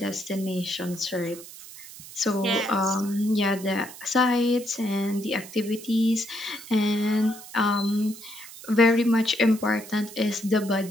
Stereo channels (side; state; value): right; noise; hiss, 16 dB below the sound